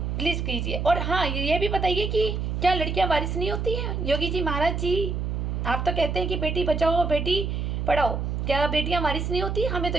प्लीज़ कीजिए। और हाँ, ये भी बताइए कि क्या लड़कियां वारिस नहीं होती हैं? योगी जी महाराज जी, आप तो कहते हैं कि बेटी बचाओ बेटी पढ़ाओ, क्या बेटियां वारिस नहीं होती? हमें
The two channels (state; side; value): noise; right; hum, 2 dB below the sound